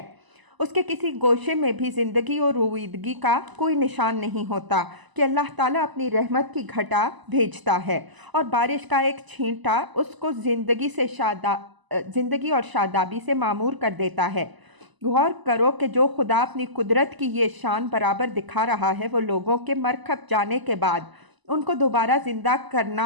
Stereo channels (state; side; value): late; left; 1.0 ms